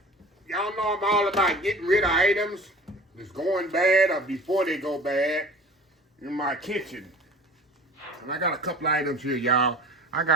Y'all know I'm all about getting rid of items that's going bad or before they go bad in my kitchen. And I got a couple items here, y'all. I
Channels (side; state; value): both; normal; correlation 0.42